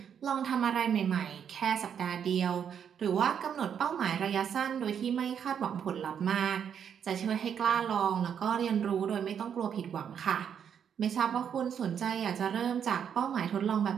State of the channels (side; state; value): left; quieter; 8.1 dB